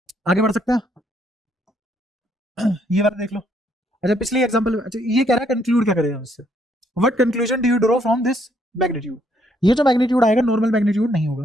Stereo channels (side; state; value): both; normal; correlation 0.70